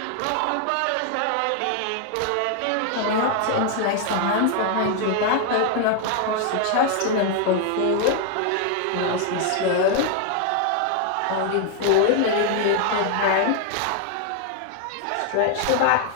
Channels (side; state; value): both; different; correlation 0.00